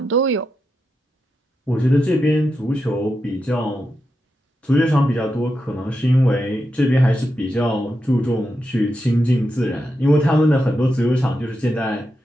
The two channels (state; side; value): normal; both; correlation 0.87